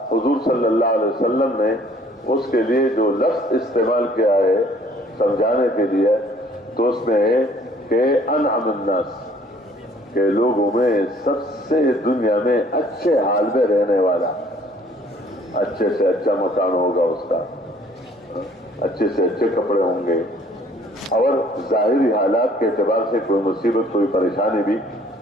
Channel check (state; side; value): normal; both; correlation 0.57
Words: حضور صلی اللہ علیہ وسلم نے اس کے لیے جو لفظ استعمال کیا ہے سمجھانے کے لیے، تو اس میں ہے کہ انعم الناس، کہ لوگوں میں سب سے دنیا میں اچھے حال میں رہنے والا، اچھے سے اچھا مکان ہوگا اس کا، اچھے سے اچھے کپڑے ہوں گے، اور ظاہری حالات کے اعتبار سے کوئی مصیبت کوئی پریشانی بھی